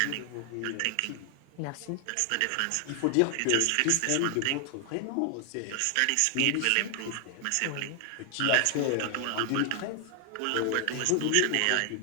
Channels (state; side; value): different; both; correlation 0.00